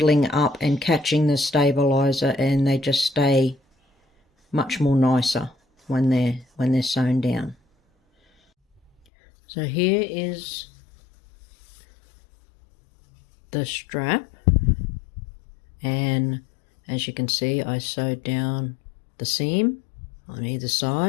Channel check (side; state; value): right; drops out; at 8.9 s